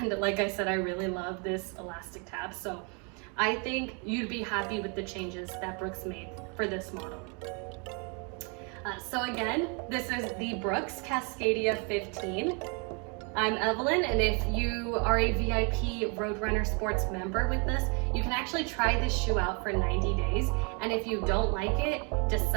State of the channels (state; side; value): quieter; left; 34.7 dB